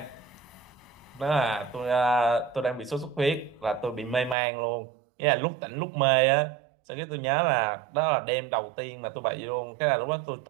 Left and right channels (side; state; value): left; drops out; at 4.4 s